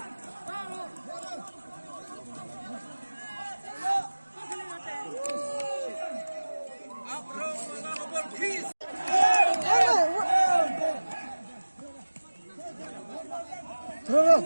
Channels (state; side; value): inverted; both; correlation -1.00